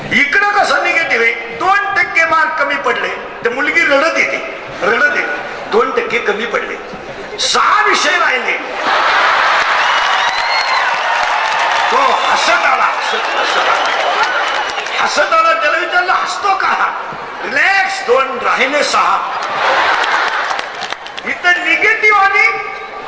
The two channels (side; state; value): both; identical; correlation 1.00